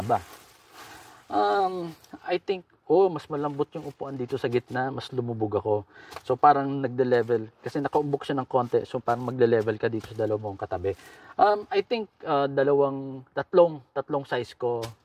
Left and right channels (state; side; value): identical; both; correlation 1.00